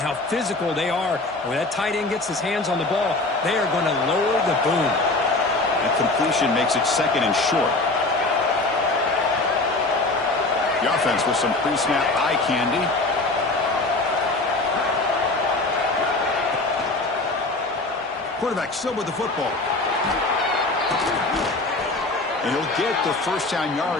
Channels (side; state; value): right; quieter; 3.1 dB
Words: physical they are. When that tight end gets his hands on the ball, they are going to lower the boom. And completion makes it 2nd and short. The offense with some pre-snap eye candy. Quarterback still with the football. And he'll get the 1st down